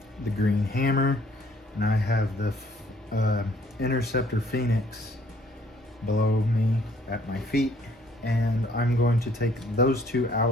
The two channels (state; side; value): normal; both; correlation 0.61